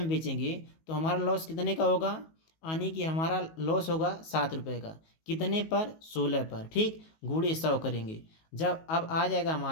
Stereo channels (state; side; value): late; right; 19 ms